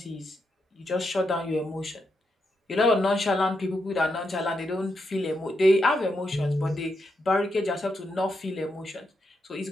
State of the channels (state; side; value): normal; both; correlation 0.83